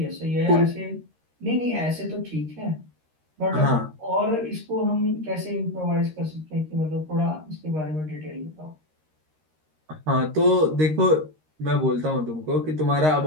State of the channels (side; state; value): left; late; 13 ms